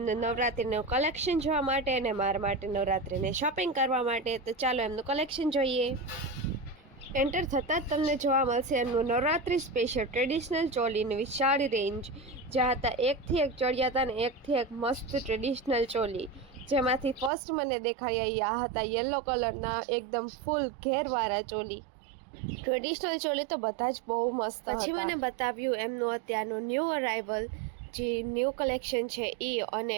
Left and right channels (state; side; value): drops out; left; at 17.3 s